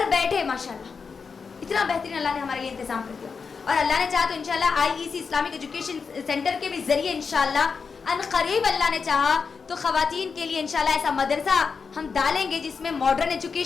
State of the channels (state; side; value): quieter; right; 5.4 dB